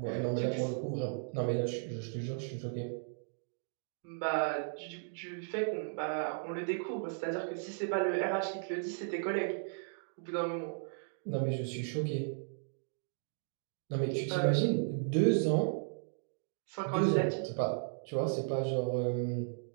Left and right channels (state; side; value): silent; left; digital silence